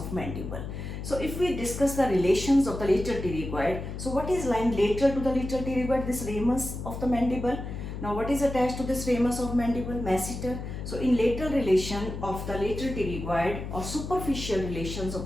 mandible. So if we discuss the relations of the lateral pterygoid, so what is lying lateral to the lateral pterygoid? This ramus of the mandible. Now what is attached to this ramus of mandible? Masseter. So in lateral relation of the lateral pterygoid, or superficial relations of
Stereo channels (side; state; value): left; noise; hum, 7 dB below the sound